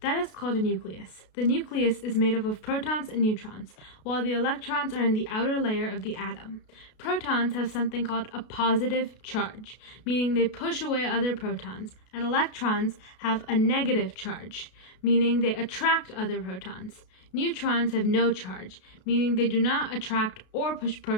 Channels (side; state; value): right; late; 33 ms